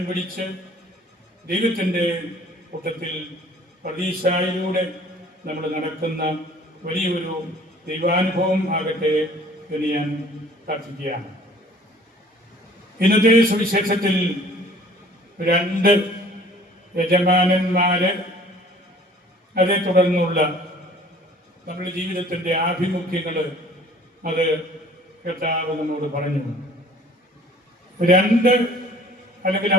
പിടിച്ച് ദൈവത്തിൻ്റെ കൂട്ടത്തിൽ പ്രതീക്ഷയിലൂടെ നമ്മൾ നടക്കുന്ന വലിയൊരു ദൈവാനുഭവം ആകട്ടെ എന്ന് ഞാൻ പ്രാർത്ഥിക്കുകയാണ്. ഇന്നത്തെ സുവിശേഷത്തിൽ 2 യജമാനന്മാര്, അതേ തുടർന്നുള്ള നമ്മുടെ ജീവിതത്തിൻ്റെ ആഭിമുഖ്യങ്ങൾ അത് കർത്താവ് നമ്മോട് പറഞ്ഞു. 2 അല്ലെങ്കിൽ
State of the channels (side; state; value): both; normal; correlation 0.52